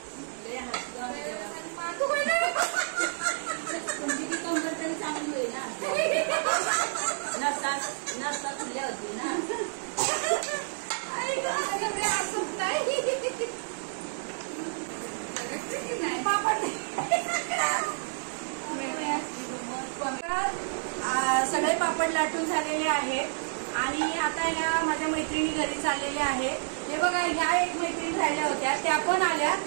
चांगली होईल ना. नसता खुल्या होती ना. सगळे पापड लाटून झालेले आहेत आणि आता या माझ्या मैत्रिणी घरी चाललेल्या आहेत. हे बघा ह्या एक मैत्रिणी राहिल्या होत्या त्या पण आल्या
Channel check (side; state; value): left; silent; digital silence